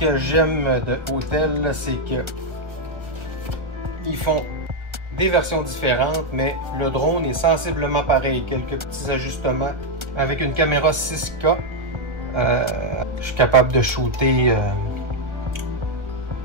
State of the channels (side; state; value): left; late; 1.5 ms